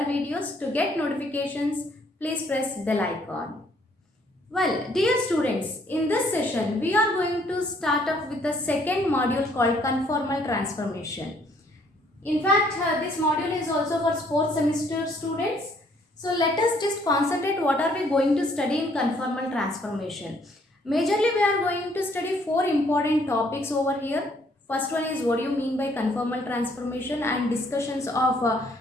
videos. To get notifications, please press bell icon. Well, dear students, in this session, we are going to start off with the second module called conformal transformation. In fact, this module is also for 4th semester students. So, let us just concentrate what are we going to study in conformal transformation. Majorly, we are going to study 4 important topics over here. First one is what do you mean by conformal transformation and discussions of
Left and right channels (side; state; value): both; normal; correlation 0.65